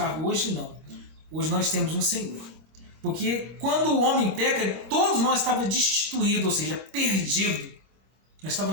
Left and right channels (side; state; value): left; late; 25 ms